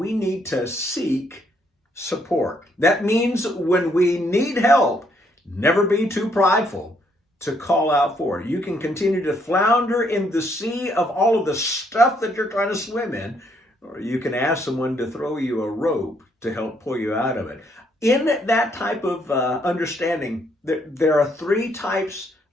need to seek support. That means when we need help, never be too prideful to call out for it. You can continue to flounder in the sea of all of the stuff that you're trying to swim in, or you can ask someone to throw you a rope to help pull you out of it. In that type of understanding, there are three types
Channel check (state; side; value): normal; both; correlation 0.71